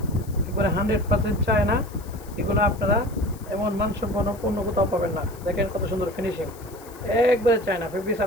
একবারে 100% চায়না। এগুলো আপনারা এমন মানসম্পন্ন পণ্য কোথাও পাবেন না। দেখেন কত সুন্দর ফিনিশিং, একবারে চায়না ফেব্রিক্স।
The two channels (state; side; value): noise; left; hiss, 22 dB below the sound